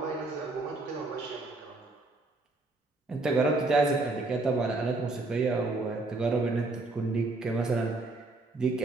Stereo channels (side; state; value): left; quieter; 3.1 dB